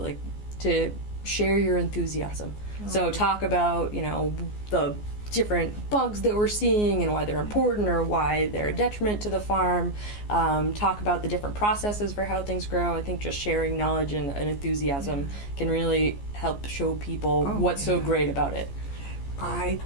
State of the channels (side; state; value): right; late; 14 ms